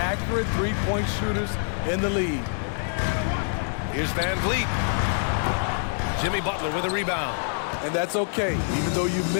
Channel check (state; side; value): silent; right; 61 dB below the other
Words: three-point shooters in the league. Here's Van Vliet. Jimmy Butler with a rebound. And that's okay. Even though you